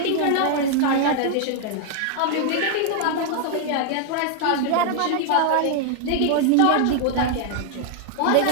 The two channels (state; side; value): different; both; correlation 0.00